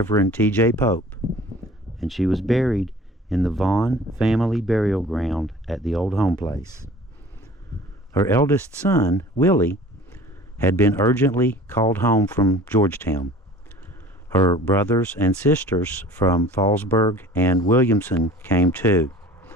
T.J. Pope, and she was buried in the Vaughn family burial ground at the old home place. Her eldest son, Willie, had been urgently called home from Georgetown. Her brothers and sisters from Fallsburg and Williamson came too,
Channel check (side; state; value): both; normal; correlation 0.45